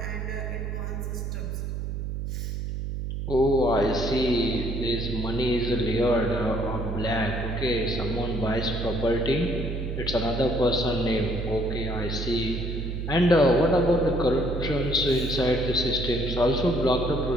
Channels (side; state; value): right; noise; hum, 4 dB below the sound